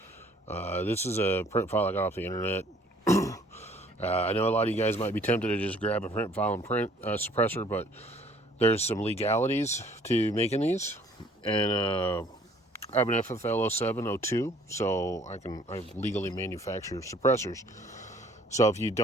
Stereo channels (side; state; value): both; normal; correlation 0.58